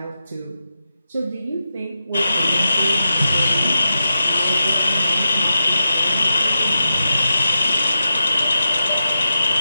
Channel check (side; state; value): both; inverted; correlation -0.90